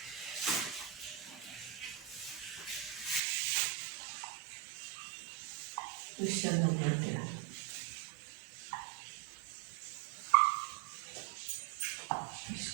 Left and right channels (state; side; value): drops out; left; at 3.2 s